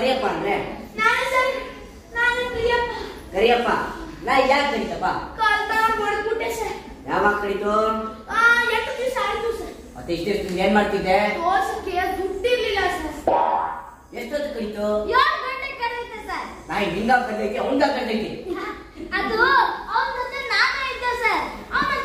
ಅಂದ್ರೆ? ನಾನು ಸರ್, ನಾನು ಪ್ರಿಯಪ್ಪ. ಕರಿಯಪ್ಪ ನಾ ಯಾಕೆ ಕರಿತಪ್ಪ? ಕಾಲ್ತಾನ ಹೊಡೆದ್ಬಿಟ್ಟೆ ಸರ್. ಯಾವಾಗ ಕರಿತು? 8 ದಿವಸ ಆಯ್ತು ಸರ್. ಮತ್ತೆ ಇಷ್ಟೆಷ್ಟು ಏನ್ ಮಾಡ್ತಿದ್ದೆ? ದೋಸಕ್ಕೆ ದುಡ್ಡಿರ್ಲಿಲ್ಲ ಸರ್. ಎಷ್ಟೊತ್ತು ಕರಿತು? 7 ಗಂಟೆಗೆ ಕರೆಯುತ್ತೆ ಸರ್. ನಾಯಿ ನಿಂಗ ಕರ್ತೈತಿ ಅವಂಗ ಕರ್ತೈತಿ. ಅದು ಅವನ ಜೊತೆ ನಾನೇ ಇದ್ದೆ ಸರ್. ಅವನ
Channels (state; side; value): identical; both; correlation 1.00